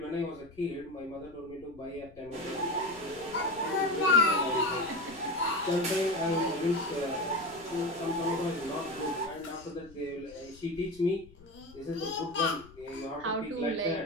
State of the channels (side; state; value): left; noise; rumble, 23 dB below the sound